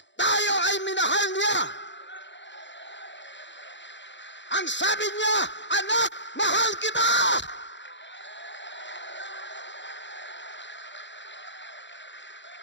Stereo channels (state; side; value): late; right; 0.53 ms